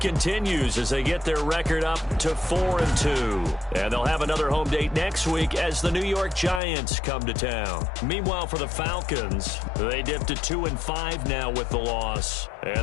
as they get their record up to 4-2. And they'll have another home date next week as the New York Giants come to town. Meanwhile, for the Falcons, they dipped to 2-5 now with the loss.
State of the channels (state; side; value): drops out; right; at 6.6 s